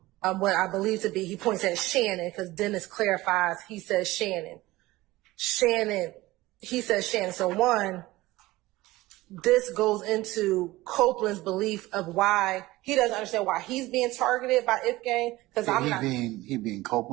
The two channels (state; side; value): quieter; left; 18.7 dB